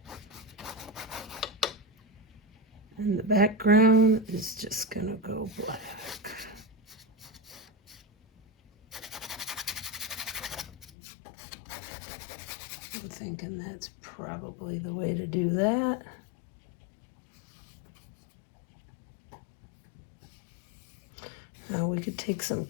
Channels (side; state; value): right; drops out; at 10.9 s